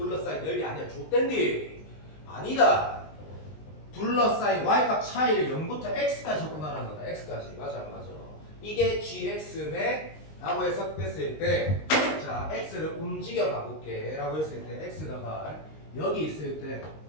넓이 아니야. 좆된디. 아니다. 둘러싸인 y값 차이를 0부터 x까지 접근하는 거다. x까지. 맞아 안 맞아. 이게 gx네 라고 해석됐을 때 자 x를 움직여 가볼게 라고 했을 때 x가 여기 있을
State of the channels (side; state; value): right; late; 19 ms